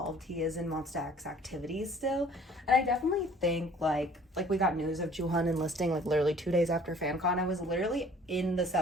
he is in Monsta X activities still. And I definitely think like we got news of Jooheon enlisting like literally 2 days after FanCon. I was literally in the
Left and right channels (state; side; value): normal; both; correlation 0.53